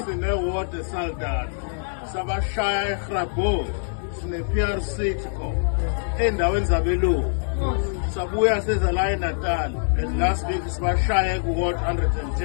Sine-ward eSaldanha. Sabashaya eGrabhow. Sine-PRC khona. Endaweni zabelungu. Sabuya seza la eNatal. And last week sibashaya ku-ward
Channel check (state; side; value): silent; right; digital silence